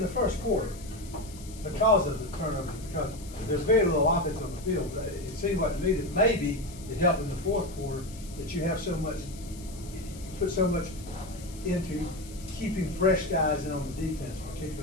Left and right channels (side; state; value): left; noise; hiss, 18 dB below the sound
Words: first quarter, because of the turnovers, because there's very little offense on the field, it seemed like to me that maybe it helped in the fourth quarter that you have put so much into keeping fresh guys in on the defense,